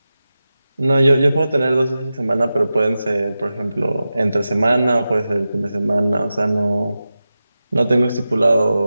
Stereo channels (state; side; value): inverted; both; correlation -0.93